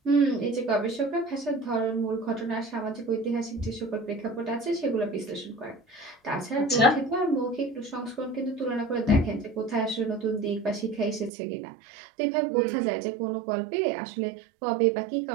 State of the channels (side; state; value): left; drops out; at 11.3 s